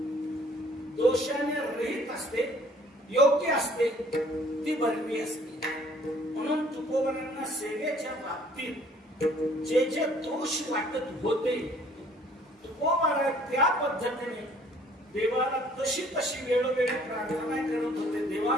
दोषाने रहित असते, योग्य असते ती बरवी असते. म्हणून तुकोबांना सेवेच्या बाबतीत जे जे दोष वाटत होते तुकोबारा त्या पद्धतीने देवाला तशी तशी वेळोवेळी प्रार्थना करत होते, देवा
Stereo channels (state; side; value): normal; both; correlation 0.58